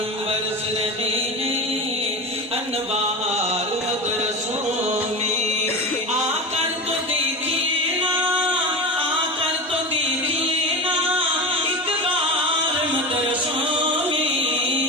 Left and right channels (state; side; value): normal; both; correlation 0.27